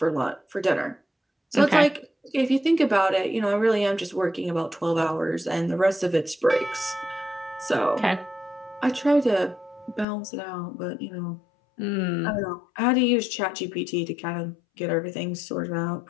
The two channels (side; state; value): right; drops out; at 10.1 s